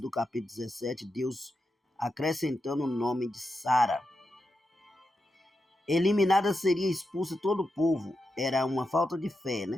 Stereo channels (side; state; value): both; normal; correlation 0.87